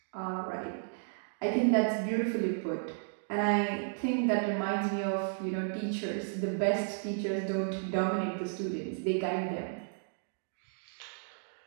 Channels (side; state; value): left; silent; digital silence